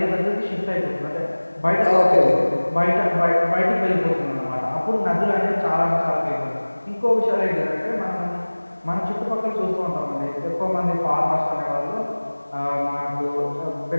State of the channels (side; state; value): both; inverted; correlation -1.00